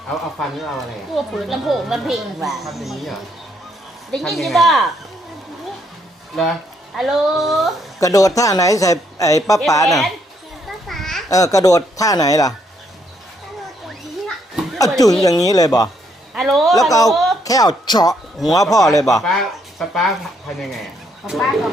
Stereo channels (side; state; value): both; normal; correlation 0.73